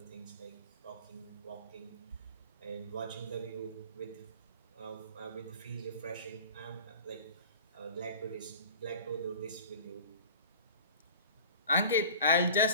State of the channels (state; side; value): inverted; both; correlation -0.41